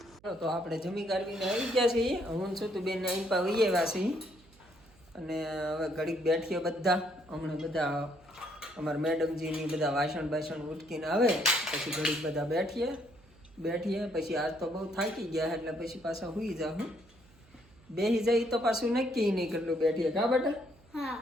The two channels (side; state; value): right; noise; hum, 28 dB below the sound